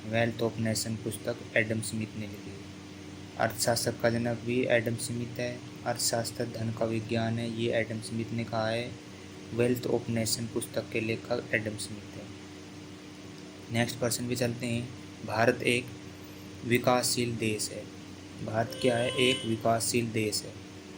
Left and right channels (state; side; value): identical; both; correlation 1.00